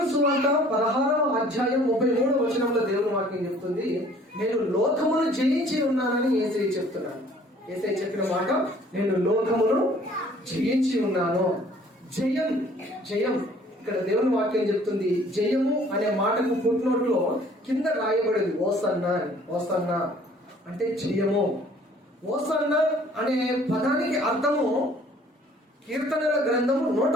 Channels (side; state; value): both; normal; correlation 0.56